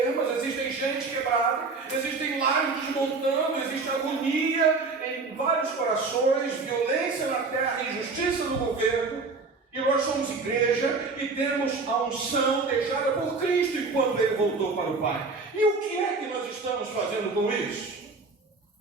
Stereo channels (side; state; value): left; quieter; 4.1 dB